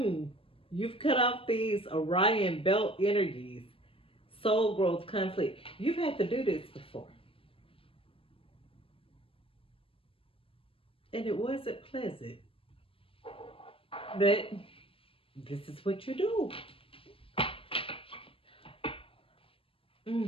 cut off these Orion belt energies, soul growth, conflict. You've had to do this before. And it wasn't pleasant. But this is what you do.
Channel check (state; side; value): late; right; 0.26 ms